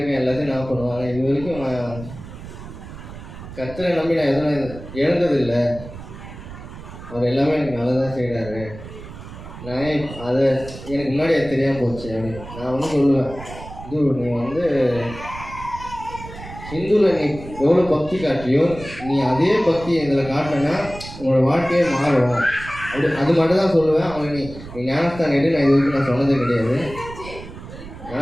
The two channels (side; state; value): right; noise; rumble, 14 dB below the sound